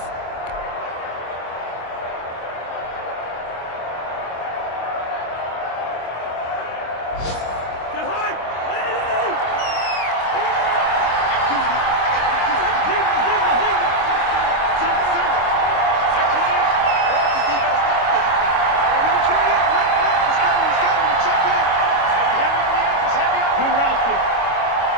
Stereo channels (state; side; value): late; right; 25 ms